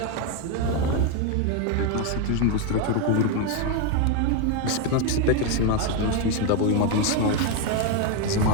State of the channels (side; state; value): both; different; correlation 0.02